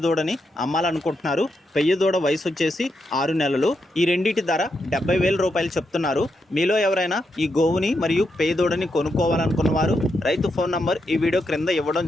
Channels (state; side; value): normal; both; correlation 0.83